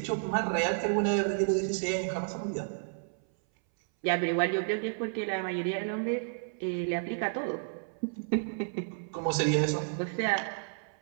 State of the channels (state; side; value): silent; left; 57 dB below the other